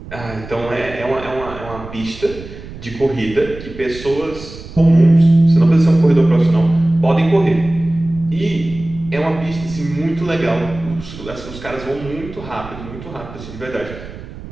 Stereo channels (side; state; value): right; noise; rumble, 14 dB below the sound